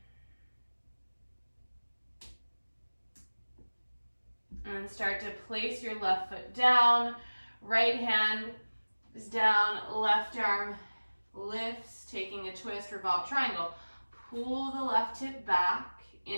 And start to place your left foot down. Right hand is down. Left arm lifts, taking a twist, revolve triangle. Pull the left hip back.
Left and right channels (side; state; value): both; inverted; correlation -1.00